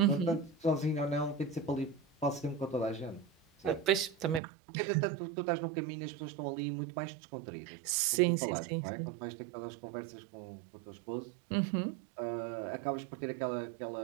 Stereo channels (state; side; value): drops out; left; at 4.4 s